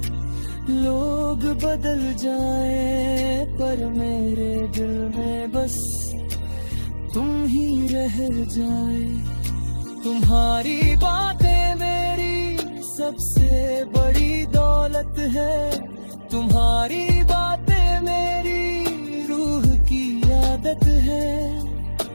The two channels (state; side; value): inverted; both; correlation -1.00